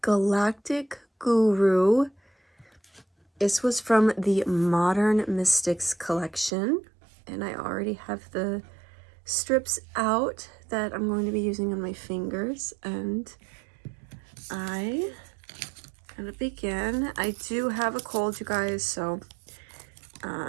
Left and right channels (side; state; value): left; drops out; at 6.5 s